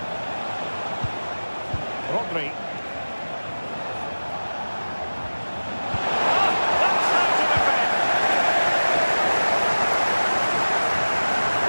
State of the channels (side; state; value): both; inverted; correlation -1.00